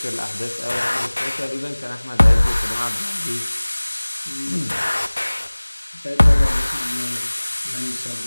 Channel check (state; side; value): inverted; both; correlation -1.00